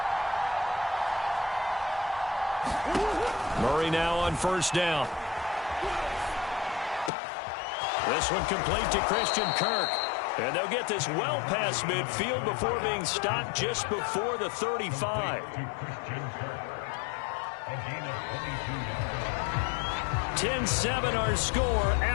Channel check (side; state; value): right; drops out; at 7.1 s